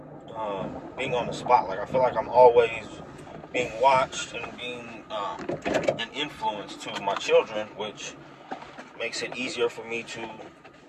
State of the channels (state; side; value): identical; both; correlation 1.00